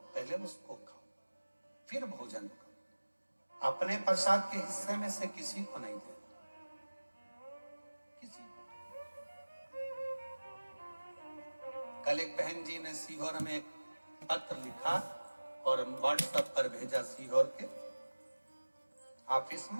पहले उसको खाओ, फिर भोजन करो। अपने प्रसाद के हिस्से में से किसी को नहीं देना, किसी को। कल एक बहन जी ने सीहोर में एक पत्र लिखा और व्हाट्सएप पर भेजा सीहोर के ऑफिस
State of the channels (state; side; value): inverted; both; correlation -1.00